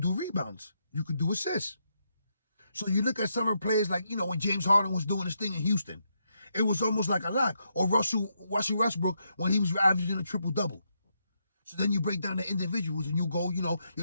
do rebounds. You could do assists. So you look at some of the players like, when James Harden was doing his thing in Houston, it was almost like a lock. Or Russell Westbrook when he was averaging a triple-double. So then you break down the individuals and you go,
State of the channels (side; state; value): both; inverted; correlation -0.80